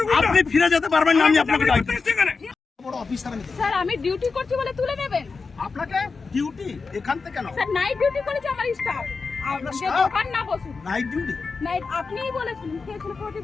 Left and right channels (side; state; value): right; quieter; 4.6 dB